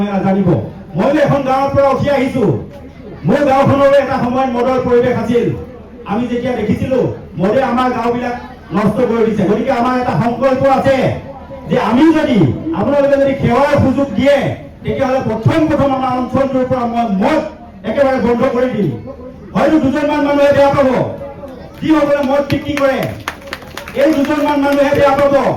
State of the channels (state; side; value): identical; both; correlation 1.00